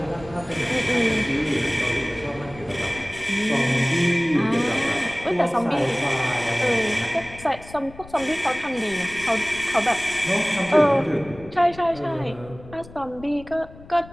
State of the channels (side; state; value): left; noise; rumble, 19 dB below the sound